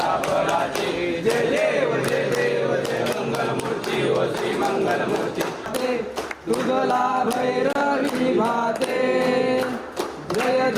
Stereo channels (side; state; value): both; identical; correlation 1.00